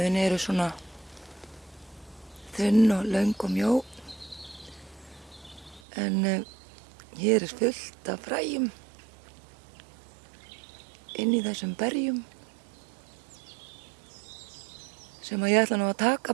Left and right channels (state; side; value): drops out; left; at 5.8 s